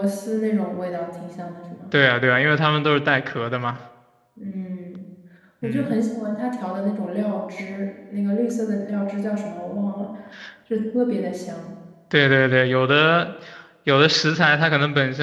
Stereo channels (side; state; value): both; identical; correlation 1.00